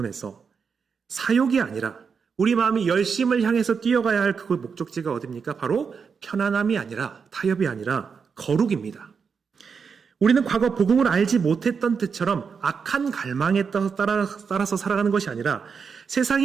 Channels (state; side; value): quieter; left; 5.9 dB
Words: 사욕이 아니라 우리 마음이 열심을 향해서 뛰어가야 할 그 목적지가 어디입니까? 바로 편안함이 아니라 타협이 아니라 거룩입니다. 우리는 과거 복음을 알지 못했던 때처럼 악한 갈망에 따라서 살아가는 것이 아니라